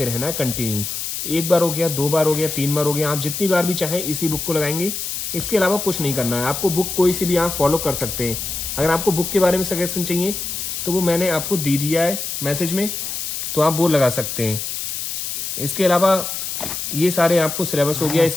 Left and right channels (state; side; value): noise; left; hiss, 4 dB below the sound